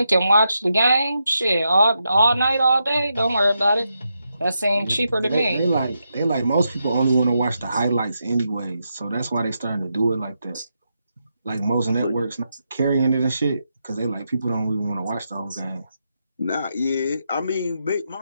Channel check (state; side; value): inverted; both; correlation -0.84